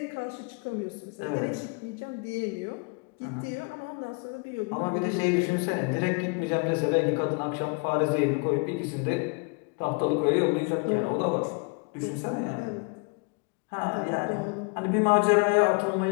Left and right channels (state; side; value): quieter; right; 34.3 dB